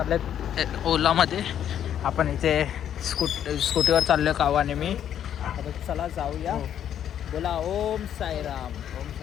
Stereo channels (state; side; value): quieter; right; 9.9 dB